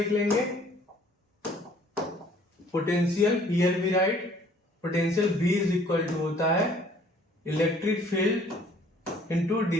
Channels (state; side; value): normal; both; correlation 0.57